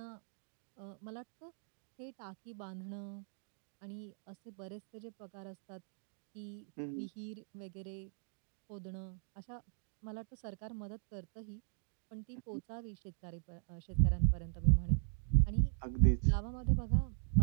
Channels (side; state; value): left; silent; digital silence